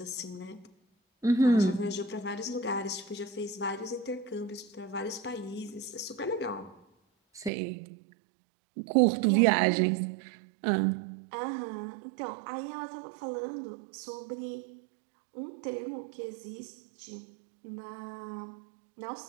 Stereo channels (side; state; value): left; drops out; at 7.5 s